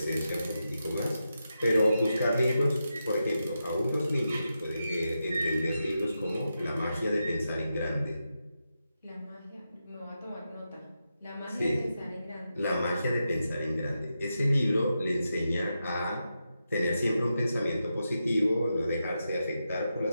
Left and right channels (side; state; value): both; inverted; correlation -0.88